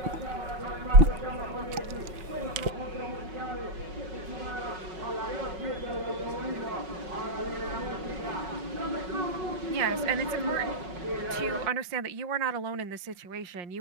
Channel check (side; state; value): left; late; 5.6 ms